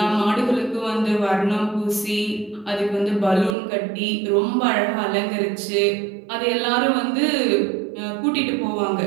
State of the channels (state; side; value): drops out; left; at 3.6 s